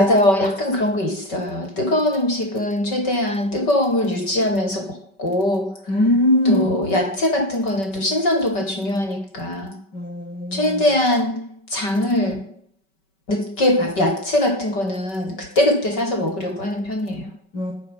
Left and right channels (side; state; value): right; late; 5.2 ms